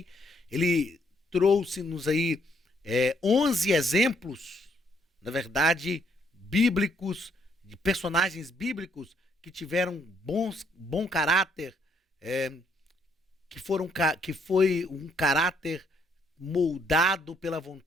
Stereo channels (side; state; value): both; normal; correlation 0.70